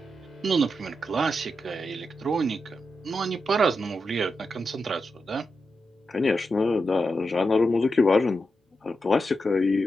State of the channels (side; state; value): both; normal; correlation 0.87